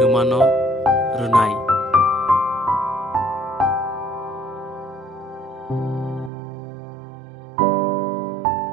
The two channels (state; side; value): drops out; left; at 6.3 s